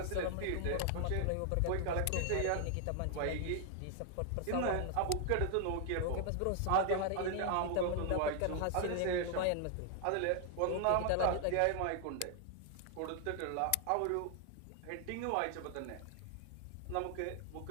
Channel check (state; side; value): different; both; correlation 0.00